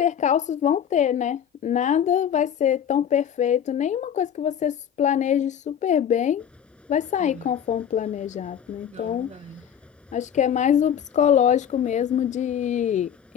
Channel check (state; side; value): quieter; right; 8.9 dB